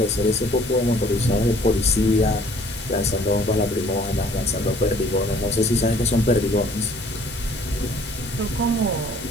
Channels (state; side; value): normal; both; correlation 0.56